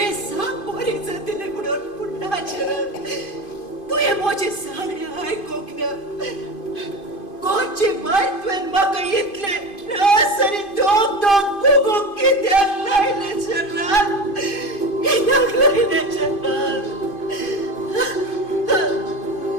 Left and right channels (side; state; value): right; late; 2.5 ms